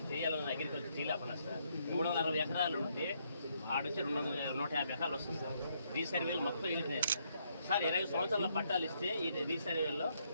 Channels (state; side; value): inverted; both; correlation -0.73